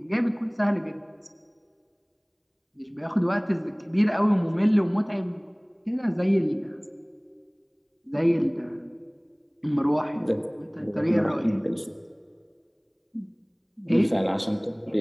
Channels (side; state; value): both; identical; correlation 1.00